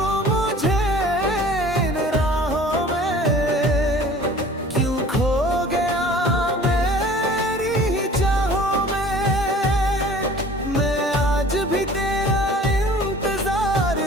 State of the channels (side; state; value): both; normal; correlation 0.47